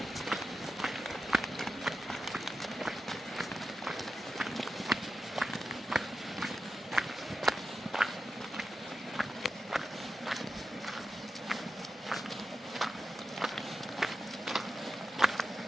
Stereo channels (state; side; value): normal; both; correlation 0.91